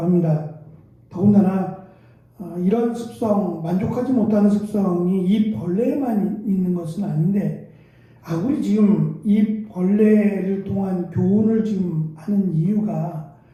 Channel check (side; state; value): both; identical; correlation 1.00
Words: 더군다나 이런 습성, 만족하지 못하는 습성이 이 벌레에만 있는 것은 아닌데, 우리 지금 이 벌레를 통한 교훈을 지금 하는 이유가